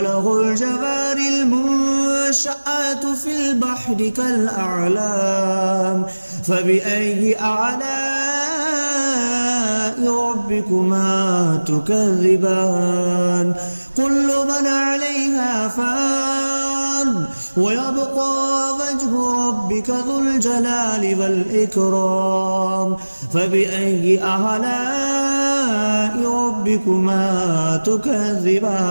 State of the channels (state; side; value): inverted; both; correlation -1.00